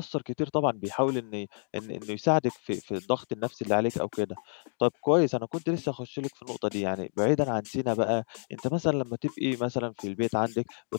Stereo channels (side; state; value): right; silent; digital silence